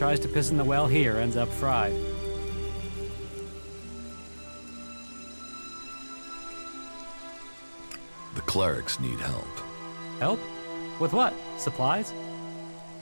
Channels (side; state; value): both; inverted; correlation -1.00